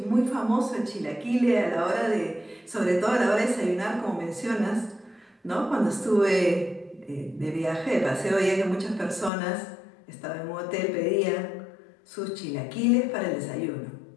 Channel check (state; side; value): drops out; right; at 9.3 s